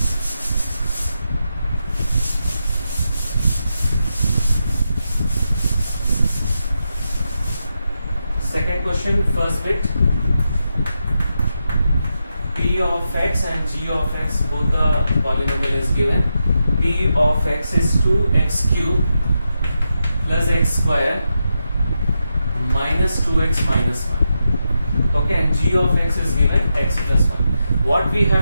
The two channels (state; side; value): inverted; both; correlation -0.86